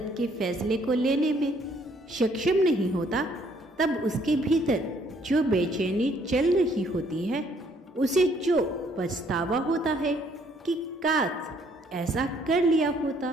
के फैसले को लेने में सक्षम नहीं होता, तब उसके भीतर जो बेचैनी चल रही होती है, उसे जो पछतावा होता है कि काश ऐसा कर लिया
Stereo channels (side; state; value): both; normal; correlation 0.65